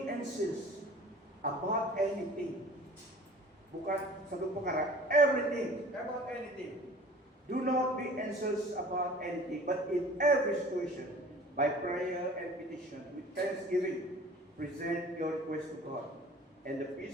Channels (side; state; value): both; normal; correlation 0.45